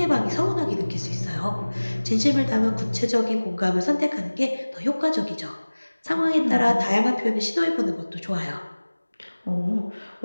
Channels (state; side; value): inverted; both; correlation -1.00